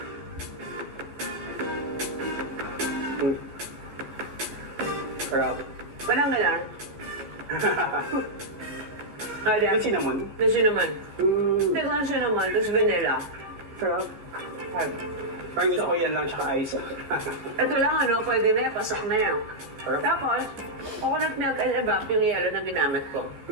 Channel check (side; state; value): left; late; 15 ms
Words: Sarap. Walang galang. May cinnamon? May cinnamon. Tiglang cinnamon, tapos vanilla. Sarap. Parang gusto ko yan lang tsaka ice. Ito lang pwede na yan, pasok na yan. Tapos, coconut milk and evap yung yellow na ginamit ko.